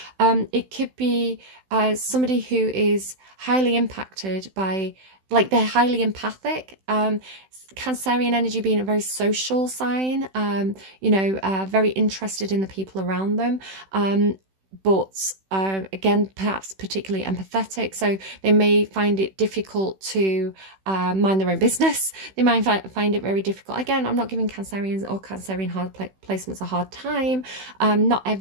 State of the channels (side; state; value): left; late; 16 ms